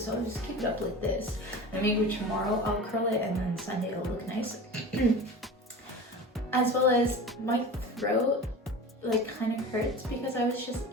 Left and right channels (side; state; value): both; normal; correlation 0.34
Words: so I'll just keep it up like this. And maybe tomorrow I'll curl it, and then Sunday it'll look nice. As well as my throat like kind of hurts because I was just